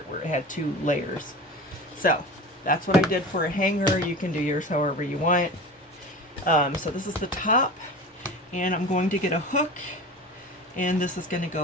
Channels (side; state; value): both; normal; correlation 0.33